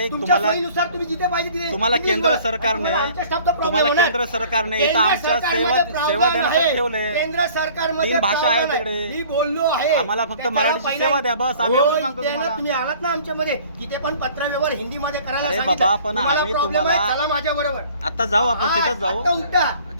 तुमच्या तुम्हाला- सोयीनुसार तुम्ही जिथे पाहिजे तिथे तुम्हाला इंग्लिश केंद्र बोला. सरकारने आमच्या स्टाफचा problem तुम्हाला होणार. केंद्र सरकारने इथं केंद्र आमच्या सरकारमध्ये सेवा प्रावधान देण्यासाठी आहे. ठेवले. केंद्र सरकारमध्ये तीन भाषा आहे प्रावधान तिकडे. मी बोललो आहे. आम्हाला फक्त त्याच्यावर मराठीची पहिला- सेवा द्या, बस. आम्ही हो, एवढं सांगतो इथे ना तुम्हाला. तुम्ही आलात ना आमच्यामध्ये, तिथे पण पत्रव्यवहार हिंदी मध्ये करायला अरे सांगितलं. बाबा, पण तुम्हाला आम्ही problem आहे, तुम्हाला- चला माझ्या बरोबर. आता जाऊ आपण, तिथंच आता जाऊ. उठा.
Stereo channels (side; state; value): both; inverted; correlation -0.51